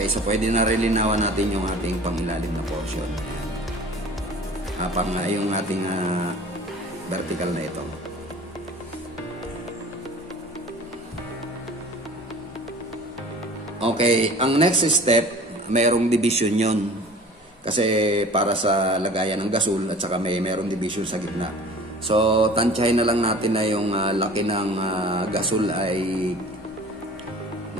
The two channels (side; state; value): both; normal; correlation 0.44